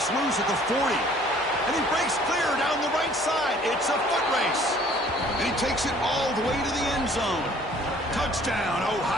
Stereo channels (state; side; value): noise; left; hum, 28 dB below the sound